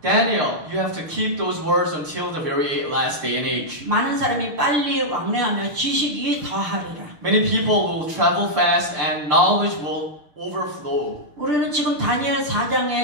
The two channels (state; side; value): late; left; 6.6 ms